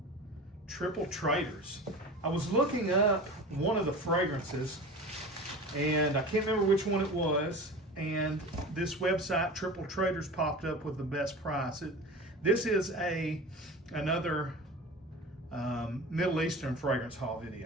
Triple Traders. I was looking up one of the fragrances and I can't remember which one it was. And this website, Triple Traders, popped up with the best price. This is another Middle Eastern fragrance haul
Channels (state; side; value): normal; both; correlation 0.34